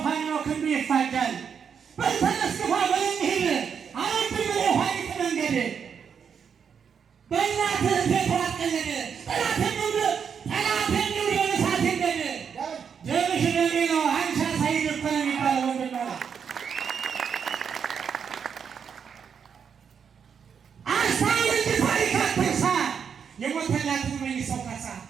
ፋኖ ክንዱ ይፋጃል በልተነስ ግፋ በልንሂድ አረድም የኋሊት መንገድ በእናትህ ቤት አትቀለድ ጠላት የሚውድ በእሳት ይንደድ ደምሽ ደሜ ነው አንቺ ሳይድ እኮ ነው የሚባለው ወንድም ማለት አስታውል እንጂ ታሪክ አትርሳ የሞተላትን መልሰው ካሳ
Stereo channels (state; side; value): quieter; left; 7.0 dB